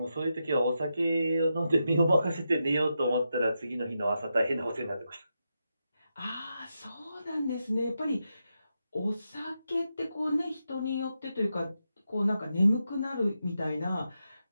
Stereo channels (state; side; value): inverted; both; correlation -0.86